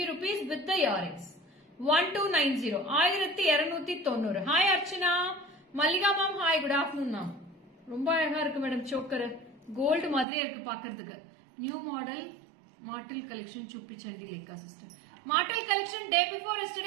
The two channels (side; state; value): left; drops out; at 10.2 s